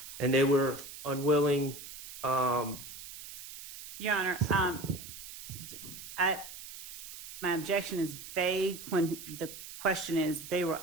and they were unwilling. Your Honor, my objection is vague when the question is they were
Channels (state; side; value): noise; right; hiss, 12 dB below the sound